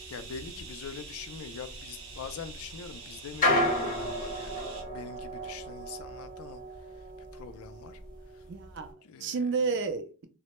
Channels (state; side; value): normal; both; correlation -0.09